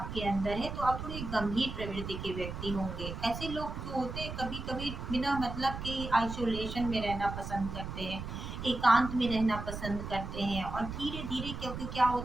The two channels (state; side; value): noise; right; rumble, 7 dB below the sound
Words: अंदर है, तो आप थोड़ी गंभीर प्रवृत्ति के व्यक्ति होंगे। ऐसे लोग जो होते हैं कभी कभी बिना मतलब के आइसोलेशन में रहना पसंद करते हैं, एकांत में रहना पसंद करते हैं। और धीरे धीरे, क्योंकि क्या